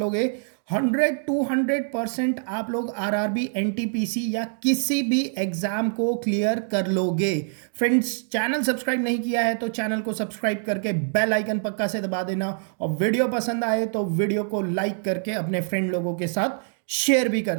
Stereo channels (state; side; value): silent; left; 62 dB below the other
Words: 100 to 100% आप लोग आरआरबी, एनटीपीसी या किसी भी एग्जाम को क्लियर कर लोगे। फ्रेंड्स, चैनल सब्सक्राइब नहीं किया है तो चैनल को सब्सक्राइब करके बेल आइकन पक्का से दबा देना, और वीडियो पसंद आए तो वीडियो को लाइक करके अपने फ्रेंड लोगों के साथ शेयर भी कर